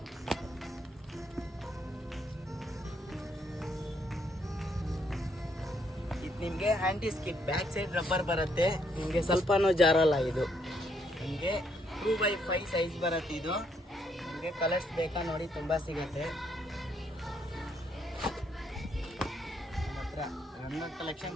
ನಿಮಗೆ ಆ್ಯಂಟಿ ಸ್ಕಿಡ್, ಬ್ಯಾಕ್ ಸೈಡ್ ರಬ್ಬರ್ ಬರುತ್ತೆ. ನಿಮಗೆ ಸ್ವಲ್ಪನೂ ಜಾರಲ್ಲ. ಇದು ನಿಮಗೆ 2x5 ಸೈಜ್ ಬರುತ್ತೆ. ಇದು ನಿಮಗೆ ಕಲರ್ಸ್ ಬೇಕಾ ನೋಡಿ, ತುಂಬ ಸಿಗುತ್ತೆ ನಮ್ಮ ಹತ್ರ. ರನ್ನರ್ ಕಲೆಕ್ಷನ್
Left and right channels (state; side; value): normal; both; correlation 0.72